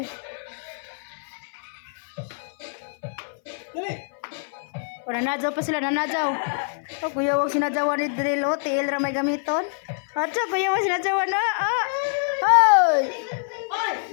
Dali. O, nanadyaw pa sila, O, kuya, wag sinadyawan ni Drill. O, tiil ra may gamiton. Atso, kuya, wag sinadyawan na. Hoy! Oy!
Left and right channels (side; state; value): right; silent; 57 dB below the other